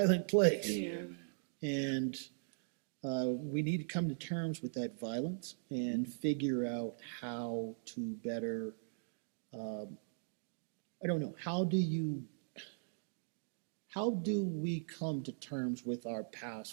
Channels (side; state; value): left; silent; digital silence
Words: place. Yeah, man. And we need to come to terms with that violence and figure out how to better, how do we come to terms with our